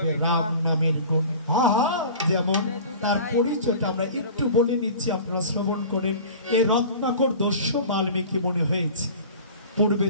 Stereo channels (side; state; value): both; inverted; correlation -0.40